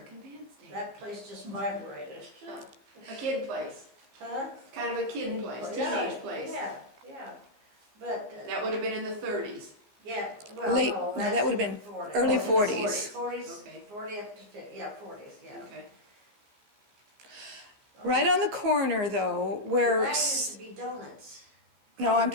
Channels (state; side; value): late; left; 14 ms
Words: Bandstand. that place just vibrated. A kid place, Huh? kind of a kid place, Yeah, teenage place. Yeah, yeah. But, That would have been in the 30s. yeah, well, Late- no, no, that's that would've in been the 40s. early 40s. 40s. Okay. 40 up to 50, yeah, 40s, yeah. Okay. Right on the corner though, where, That used to be donuts. no, I'm